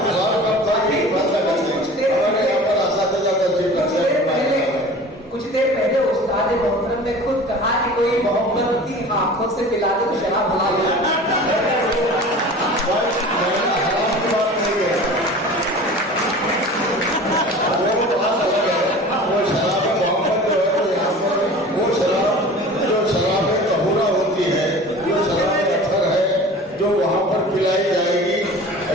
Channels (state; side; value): normal; both; correlation 0.40